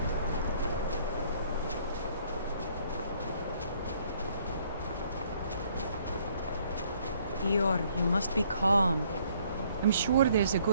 Dior, you must be calm. I'm sure there's a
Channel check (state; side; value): inverted; both; correlation -0.64